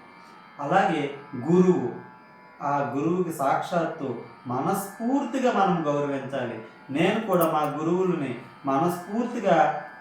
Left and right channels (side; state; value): both; identical; correlation 1.00